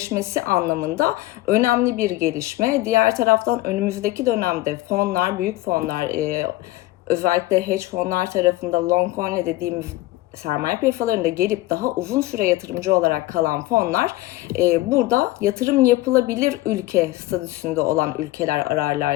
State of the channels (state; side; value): quieter; right; 17.7 dB